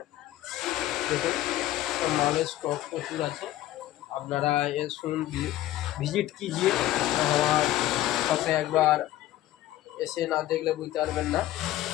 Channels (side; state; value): right; quieter; 14.8 dB